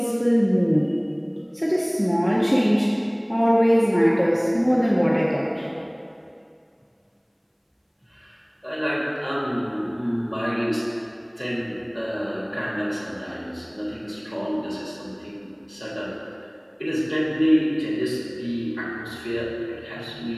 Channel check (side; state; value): both; identical; correlation 1.00